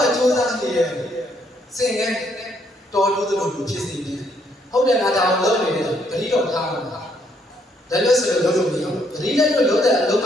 ာ့ကျိုးစားနေတယ်စင်ငယ်တော်လို့တို့ဖြစ်စီတယ်ဟုတ်တယ်ငါတောင်လုံးနေတယ်တတိတော့ထားမှာဒါလို့ဆိုလို့လုံးလို့မရဘူးတတိလည်းတော့လုံးတဲ့အလုံး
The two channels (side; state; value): both; normal; correlation 0.71